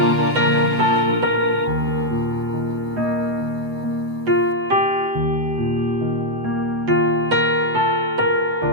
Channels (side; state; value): left; late; 7.9 ms